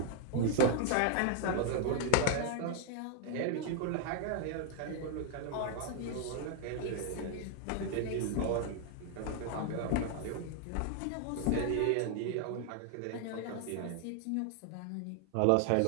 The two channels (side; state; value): both; different; correlation 0.00